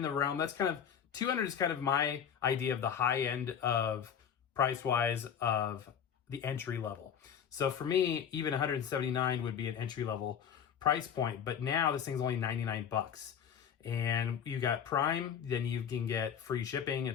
the realm. That's kind of, $200 is kind of my idea of the high end of price-wise of the entry level. So for me, even $179 would be an entry level price point. But now this thing's only $99. And you got Prime, then you can get free shipping,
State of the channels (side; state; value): right; quieter; 8.2 dB